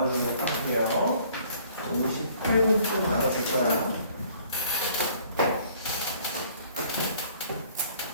할게요. 58분쯤 나눠줄 거야.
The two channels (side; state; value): both; inverted; correlation -0.58